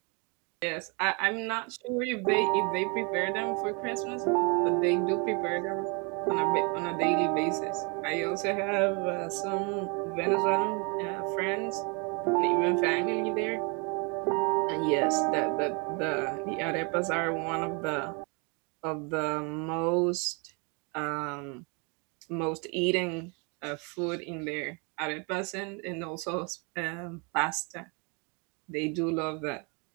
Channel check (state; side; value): quieter; left; 32.9 dB